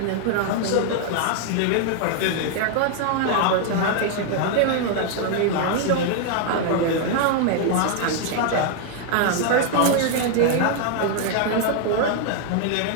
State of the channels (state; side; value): different; both; correlation 0.00